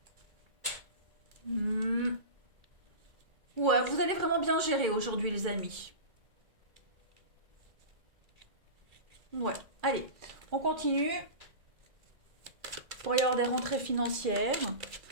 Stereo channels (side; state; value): left; late; 2.3 ms